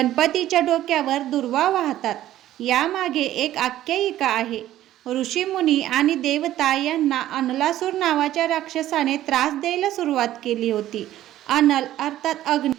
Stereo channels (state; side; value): quieter; left; 13.4 dB